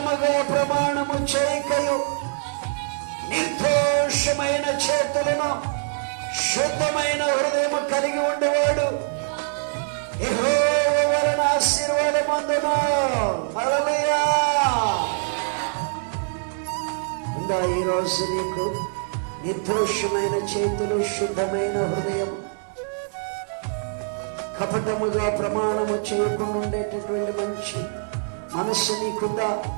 ప్రమాణము చేయకయు, నిర్దోషమైన చేతులను శుద్ధమైన హృదయము కలిగి ఉండేవాడు యెహోవా వలన ఆశీర్వాదం పొందును. హల్లెలూయా. ఉందా ఈరోజు నీకు నిర్దోషమైన చేతులు, శుద్ధమైన హృదయం, కపటముగా ప్రమాణము చేయడం ఉండేటటువంటి మంచి మనస్సు నీకుందా?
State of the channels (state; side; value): silent; left; digital silence